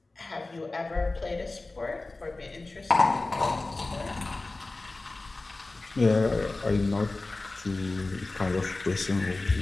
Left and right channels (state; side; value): quieter; right; 3.2 dB